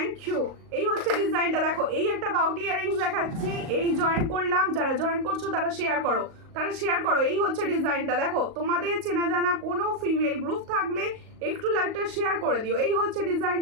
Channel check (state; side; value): late; left; 38 ms